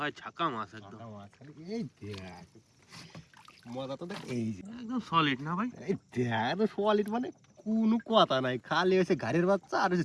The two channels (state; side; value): identical; both; correlation 1.00